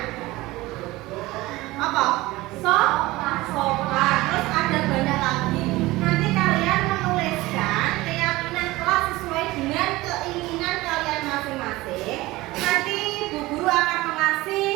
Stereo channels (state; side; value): quieter; left; 19.4 dB